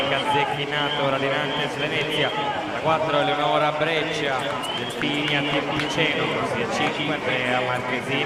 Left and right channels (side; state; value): both; identical; correlation 1.00